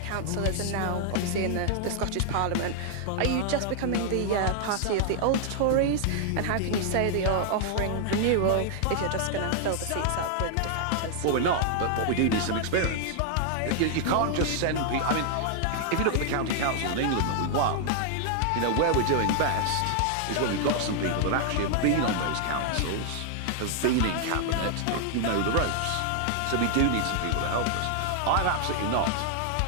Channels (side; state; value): both; different; correlation 0.00